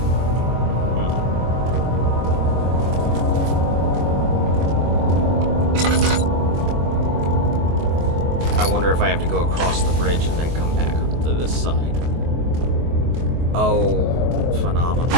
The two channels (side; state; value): left; late; 24 ms